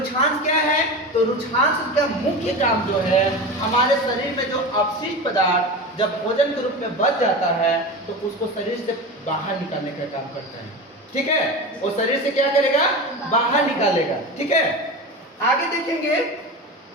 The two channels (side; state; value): both; normal; correlation 0.27